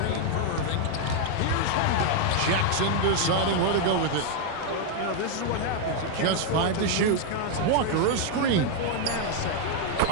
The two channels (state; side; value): different; both; correlation 0.00